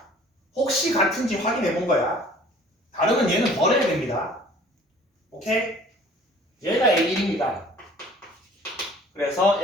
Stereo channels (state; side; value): normal; both; correlation 0.51